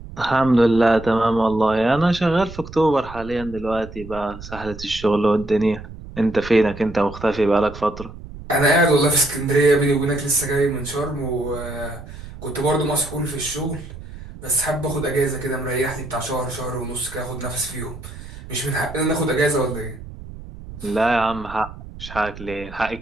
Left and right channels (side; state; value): right; noise; rumble, 14 dB below the sound